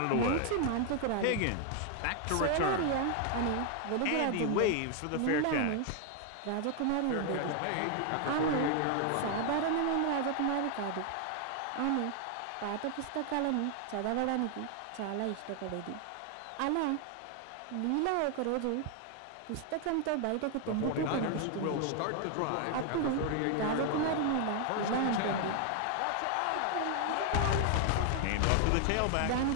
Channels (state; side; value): different; both; correlation 0.00